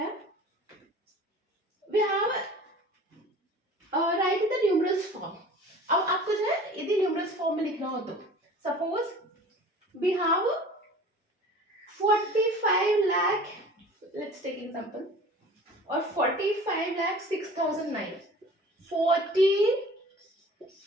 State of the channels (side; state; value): both; normal; correlation 0.44